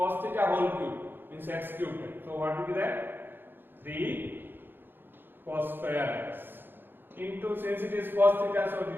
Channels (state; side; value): late; left; 0.099 ms